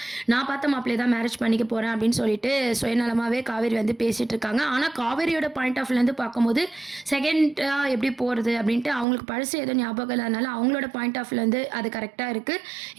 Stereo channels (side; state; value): left; drops out; at 9.1 s